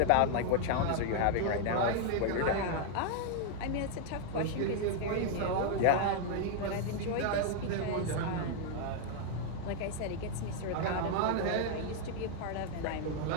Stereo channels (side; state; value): both; different; correlation 0.00